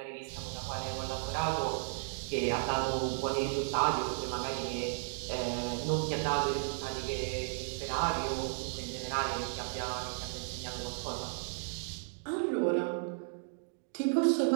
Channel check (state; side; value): silent; left; digital silence